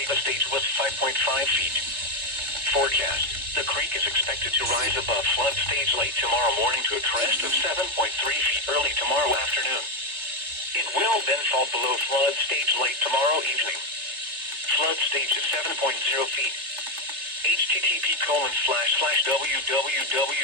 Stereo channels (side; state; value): left; late; 3.3 ms